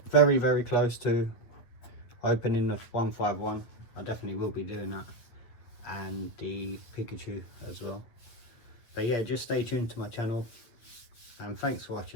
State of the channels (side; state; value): right; late; 8.8 ms